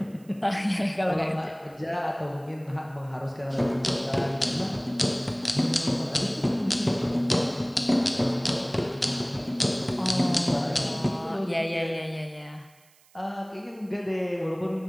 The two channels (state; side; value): noise; right; hiss, 29 dB below the sound